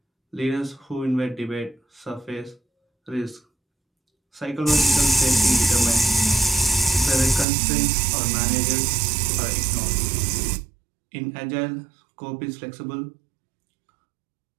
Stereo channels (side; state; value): left; drops out; at 7.5 s